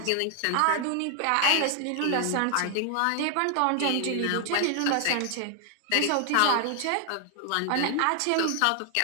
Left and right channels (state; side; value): different; both; correlation 0.00